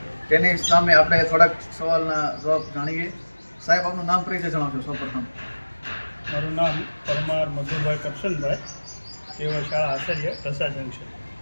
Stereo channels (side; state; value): both; inverted; correlation -1.00